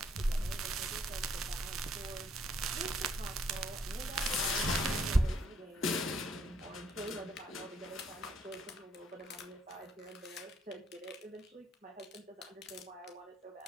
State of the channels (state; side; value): normal; both; correlation 0.69